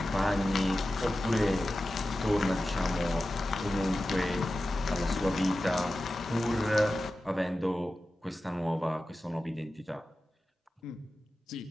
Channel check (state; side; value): normal; both; correlation 0.94